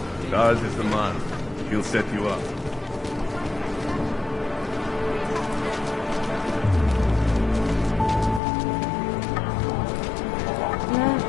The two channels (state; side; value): drops out; right; at 8.4 s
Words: Charles is the man. He'll set you up.